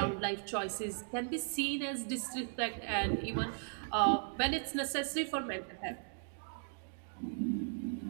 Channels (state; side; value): silent; left; digital silence